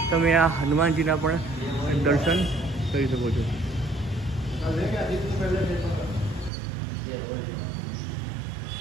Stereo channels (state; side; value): drops out; left; at 6.5 s